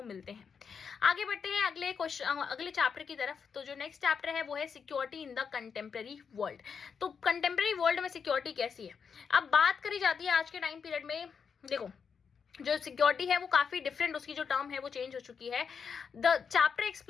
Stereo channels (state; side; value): quieter; right; 6.3 dB